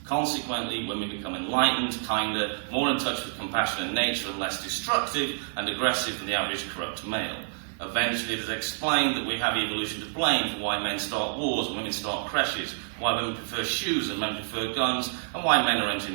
Consequently, women become enlightened, kinder, more in touch with compassion and nature, and less destructive and aggressive than the average corrupt male. Eventually, it is explained that we have evolution to blame for why men start wars and women start crashes, why women prefer shoes and men prefer guns, and why men are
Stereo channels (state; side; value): silent; left; digital silence